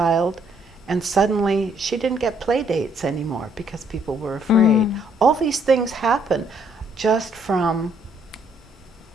and suddenly she didn't get play dates anymore because people were afraid. All these things happen just from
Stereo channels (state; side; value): normal; both; correlation 0.68